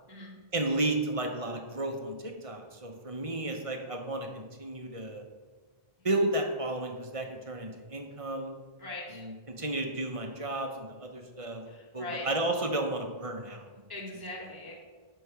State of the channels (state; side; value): late; left; 1.5 ms